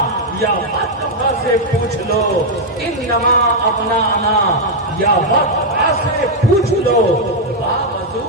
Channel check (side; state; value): both; normal; correlation -0.01